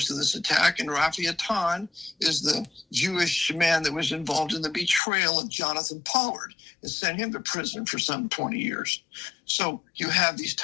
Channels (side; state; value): right; drops out; at 5.0 s